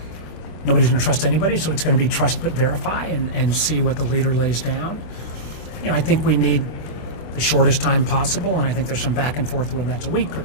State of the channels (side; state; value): right; late; 26 ms